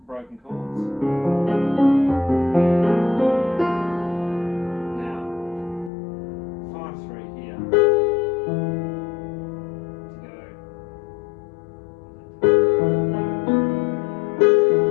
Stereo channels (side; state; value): right; drops out; at 5.9 s